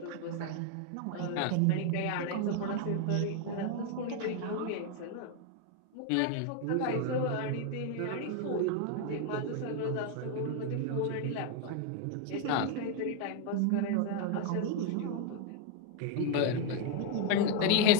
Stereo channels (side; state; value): both; different; correlation 0.01